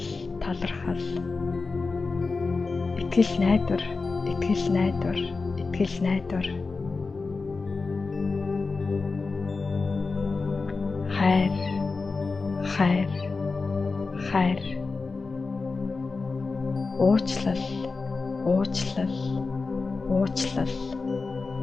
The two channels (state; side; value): quieter; right; 4.1 dB